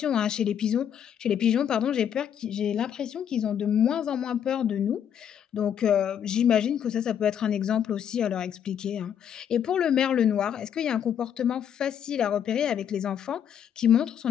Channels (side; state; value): right; quieter; 8.9 dB